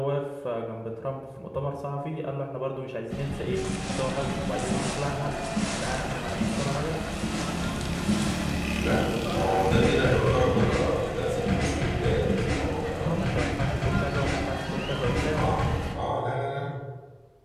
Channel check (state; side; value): identical; both; correlation 1.00